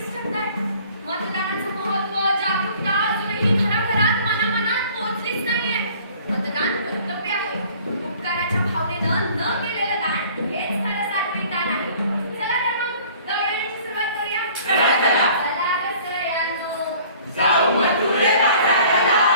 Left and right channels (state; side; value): inverted; both; correlation -0.52